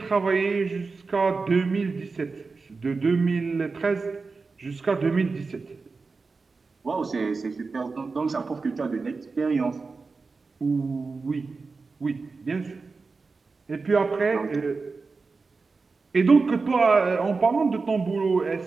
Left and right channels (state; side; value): quieter; left; 4.3 dB